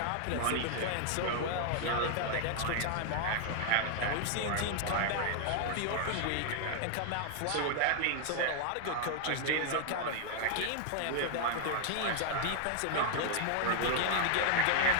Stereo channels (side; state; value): both; different; correlation 0.00